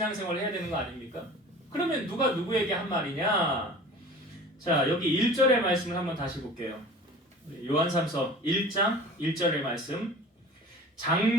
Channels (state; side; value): normal; both; correlation 0.41